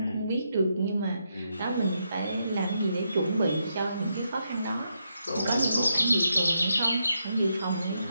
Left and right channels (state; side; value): inverted; both; correlation -0.81